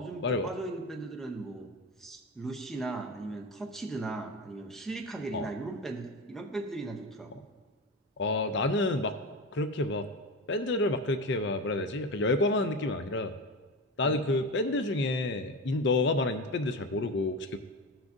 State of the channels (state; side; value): normal; both; correlation 0.24